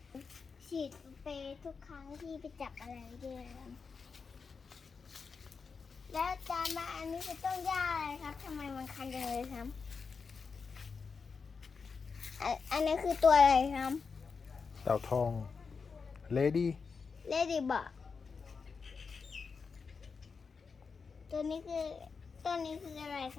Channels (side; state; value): right; quieter; 5.2 dB